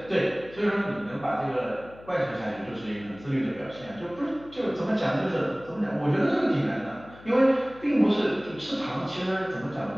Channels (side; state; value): left; noise; hum, 20 dB below the sound